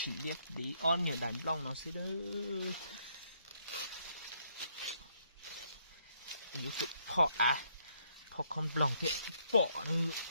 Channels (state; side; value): inverted; both; correlation -0.71